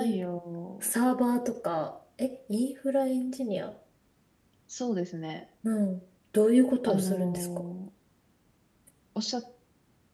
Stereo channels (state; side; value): identical; both; correlation 1.00